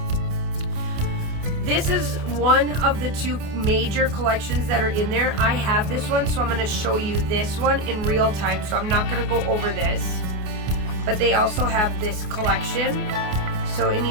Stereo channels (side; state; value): left; late; 28 ms